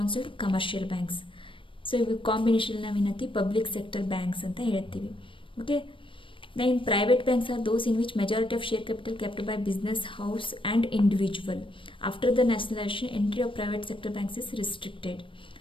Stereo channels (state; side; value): late; right; 0.25 ms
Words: commercial banks. So ಇವು ಕಾಂಬಿನೇಷನ್ ನಾವೇನಂತೀವಿ ಪಬ್ಲಿಕ್ ಸೆಕ್ಟರ್ ಬ್ಯಾಂಕ್ಸ್ ಅಂತ ಹೇಳ್ತೀವಿ. Okay, then private banks are those in which majority of share capital kept by business, house and individual. After the nationalization, entry of private sector banks is restricted.